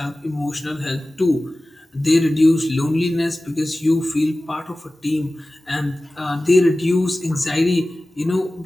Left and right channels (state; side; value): normal; both; correlation 0.96